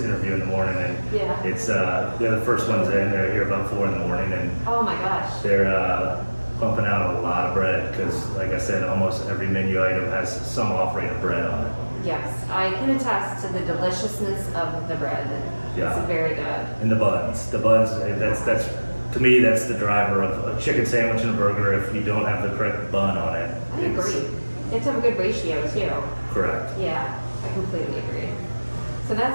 interview in the morning, and it's they're the first ones in. They're here about 4 in the morning, and oh my gosh, they're pumping out a lot of bread because, like I said, almost every menu item has some offering of bread on it. Yes, I can attest to the deliciousness of the bread. Yeah. It's very good. And the buns, that's to me, that's the driver of a chicken sandwich and a burger. If you don't have the correct bun on it, I agree. It's a good ratio too. Correct. Yeah, I completely agree. So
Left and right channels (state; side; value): inverted; both; correlation -1.00